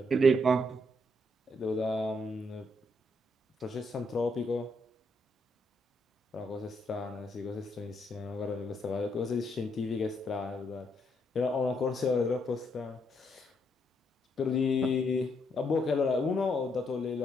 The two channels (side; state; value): both; normal; correlation 0.75